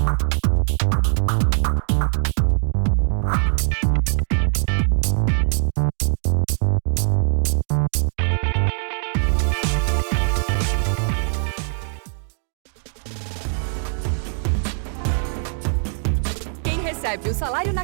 Recebe o salário na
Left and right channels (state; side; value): silent; left; digital silence